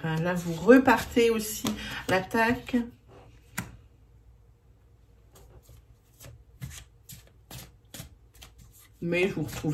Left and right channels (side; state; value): both; identical; correlation 1.00